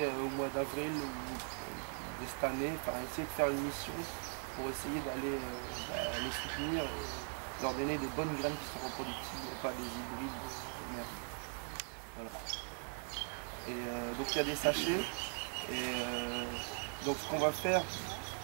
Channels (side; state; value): left; silent; 51 dB below the other